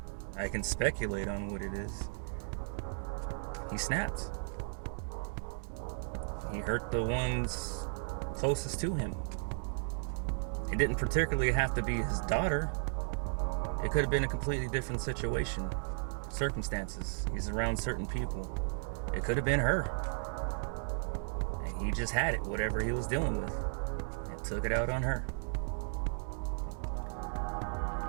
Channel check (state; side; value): silent; left; digital silence